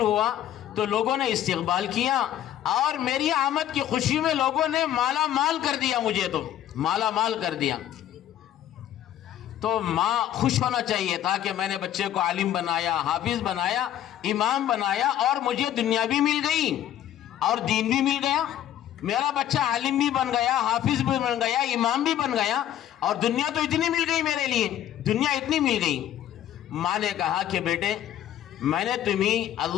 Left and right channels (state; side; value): quieter; right; 11.5 dB